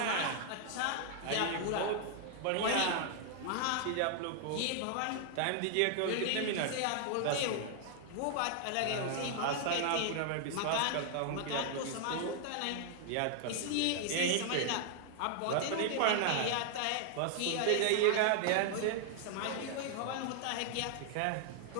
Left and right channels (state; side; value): different; both; correlation 0.00